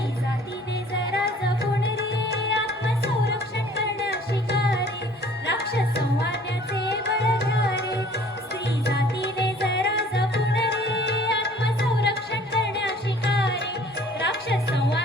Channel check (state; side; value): normal; both; correlation 0.52